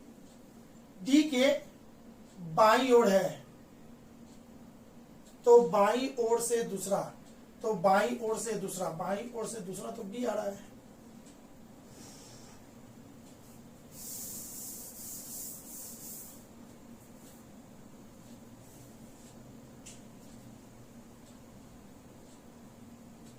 डी के बाईं ओर है। तो बाईं ओर से दूसरा, तो बाईं ओर से दूसरा, बाईं ओर से दूसरा तो बी आ रहा है।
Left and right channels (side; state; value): both; identical; correlation 1.00